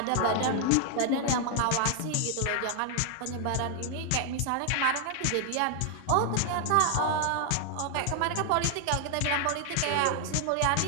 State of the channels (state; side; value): different; both; correlation 0.00